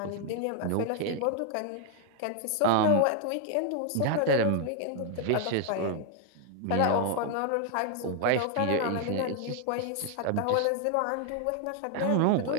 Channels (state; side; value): different; both; correlation 0.00